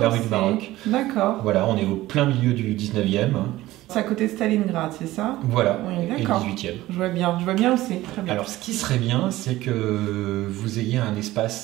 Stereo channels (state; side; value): quieter; left; 16.7 dB